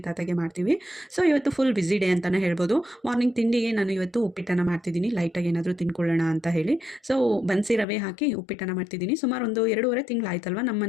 ತಾತಗೆ ಮಾಡ್ತೀವಿ. ಸೊ ಇವತ್ತು ಫುಲ್ ಬ್ಯುಸಿ ಡೇ ಅಂತಲೇ ಹೇಳ್ಬೋದು. ಮಾರ್ನಿಂಗ್ ತಿಂಡಿಗೆ ನಾನು ಇವತ್ತು ಉಪ್ಪಿಟ್ಟನ್ನು ಮಾಡ್ತಿದ್ದೀನಿ, ಲೈಟಾಗಿ ಏನಾದರೂ ತಿನ್ಕೊಳ್ಳೋಣ ಅಂತ ಹೇಳಿ. ಸೊ ಬನ್ಸಿ ರವೆ ಹಾಕಿ ಉಪ್ಪಿಟ್ಟನ್ನು ಮಾಡ್ತಿದ್ದೀನಿ. ಸುಮಾರು ಒಂದು 2.5 ತಿಂಗಳಾಯ್ತಲ್ವ ನಮ್ಮ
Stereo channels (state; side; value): drops out; right; at 7.9 s